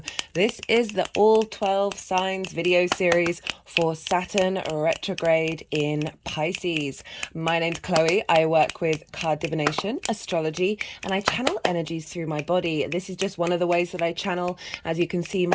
This is the all 12 signs video series for Saturn retrograde in Pisces. My name's Chloe. I work with card divination, astrology, and I channel energies through my body. This is just one of the ways that I channel. As you can see,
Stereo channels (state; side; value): identical; both; correlation 1.00